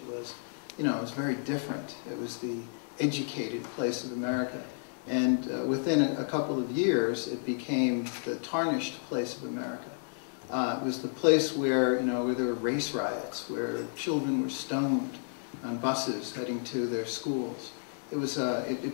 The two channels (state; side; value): silent; right; digital silence